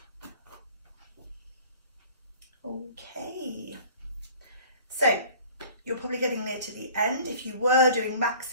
Okay, so you're probably getting near to the end. If you were doing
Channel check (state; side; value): inverted; both; correlation -0.48